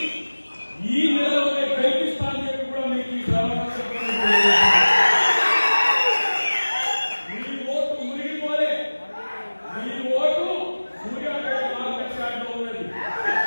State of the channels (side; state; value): both; inverted; correlation -1.00